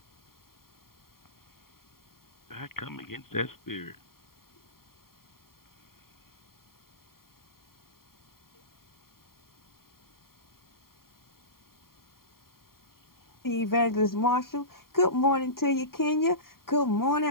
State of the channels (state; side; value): late; right; 0.93 ms